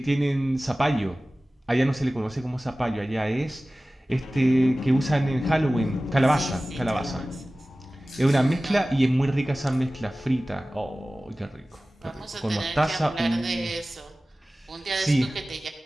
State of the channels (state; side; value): normal; both; correlation 0.97